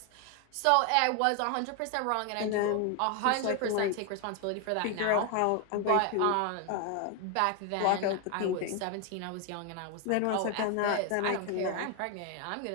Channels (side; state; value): both; different; correlation 0.01